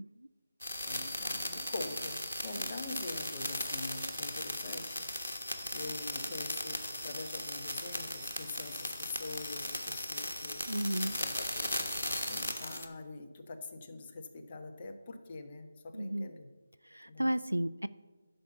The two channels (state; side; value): inverted; both; correlation -0.85